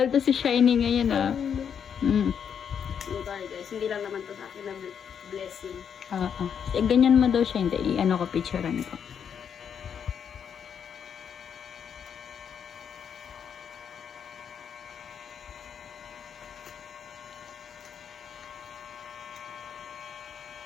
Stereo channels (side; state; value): right; quieter; 7.7 dB